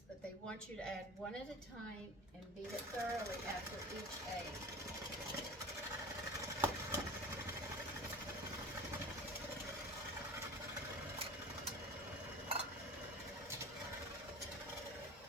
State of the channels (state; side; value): normal; both; correlation 0.36